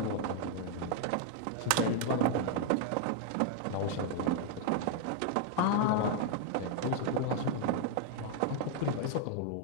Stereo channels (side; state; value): both; different; correlation 0.00